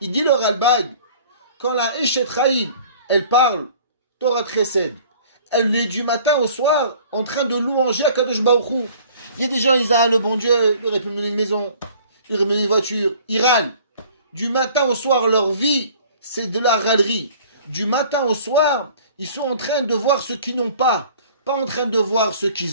dit le Ralbag, quand la Eshet Chaim, elle parle, Torah Chesed, elle est du matin au soir en train de louanger à Kadosh Baruch Hu. Il y a des gens, ils disent, ah, le bon Dieu, il aurait pu me donner une maison, il aurait pu me donner une voiture. Ils râlent. Du matin au soir, leur vie, c'est de la râlerie. Du matin au soir, ils sont en train de voir ce qu'ils n'ont pas en train de voir ce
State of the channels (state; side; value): inverted; both; correlation -0.51